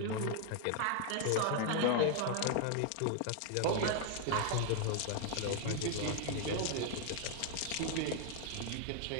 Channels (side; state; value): both; different; correlation 0.00